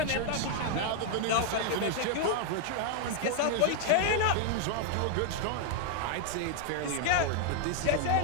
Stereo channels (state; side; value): different; both; correlation 0.00